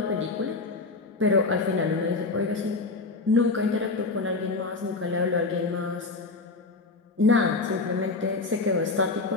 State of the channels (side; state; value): right; quieter; 3.7 dB